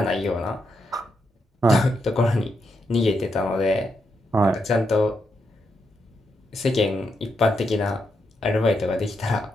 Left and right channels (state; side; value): normal; both; correlation 0.82